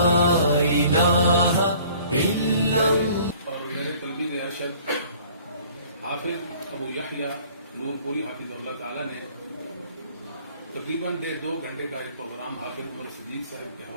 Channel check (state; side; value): inverted; both; correlation -0.52